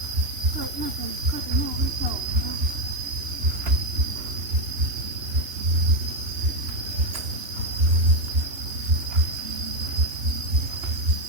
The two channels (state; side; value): late; left; 2.9 ms